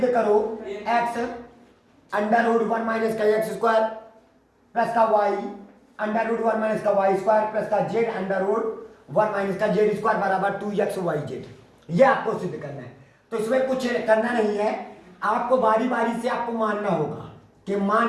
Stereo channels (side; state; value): both; identical; correlation 1.00